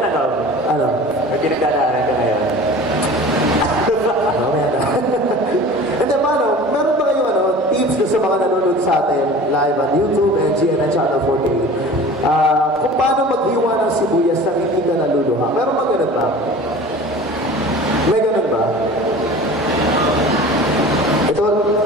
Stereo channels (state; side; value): normal; both; correlation 0.40